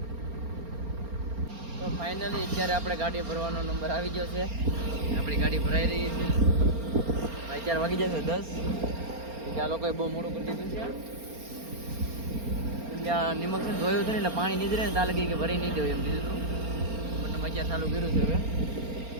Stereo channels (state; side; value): late; left; 4.3 ms